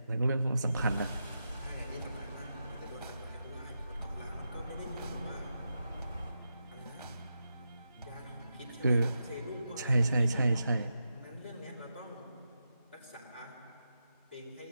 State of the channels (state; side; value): inverted; both; correlation -0.88